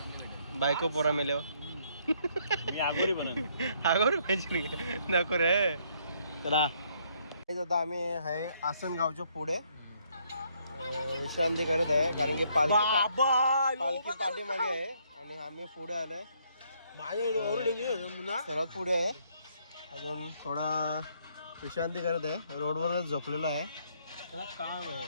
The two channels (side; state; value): both; inverted; correlation -0.69